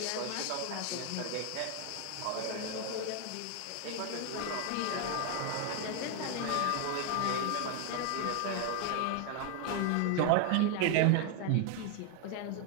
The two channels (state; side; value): different; both; correlation 0.01